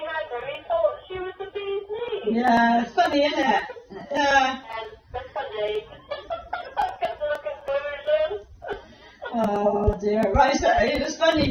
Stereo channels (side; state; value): both; identical; correlation 1.00